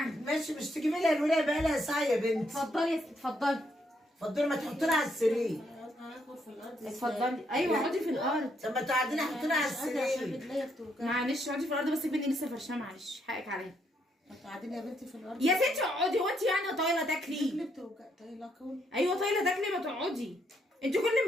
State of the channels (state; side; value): normal; both; correlation 0.74